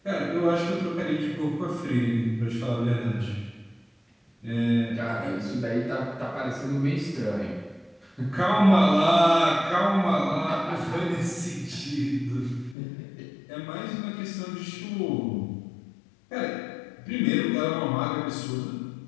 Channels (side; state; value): right; drops out; at 12.8 s